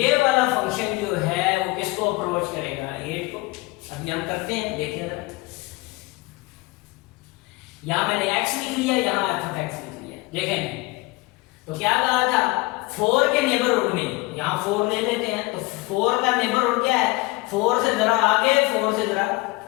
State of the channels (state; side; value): quieter; right; 22.7 dB